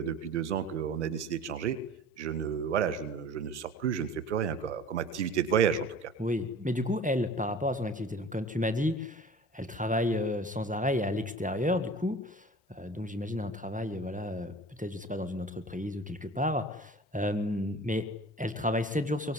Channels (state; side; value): normal; both; correlation 0.42